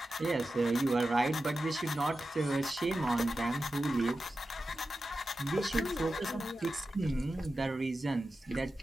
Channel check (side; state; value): both; normal; correlation 0.92